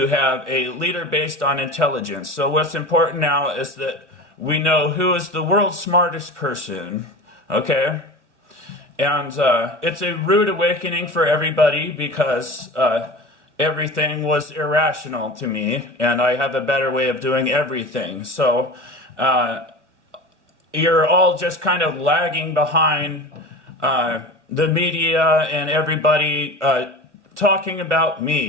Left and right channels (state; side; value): late; left; 1.0 ms